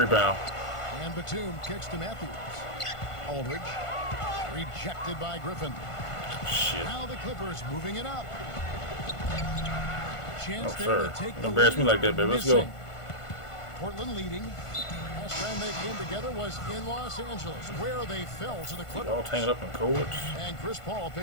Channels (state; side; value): late; right; 1.5 ms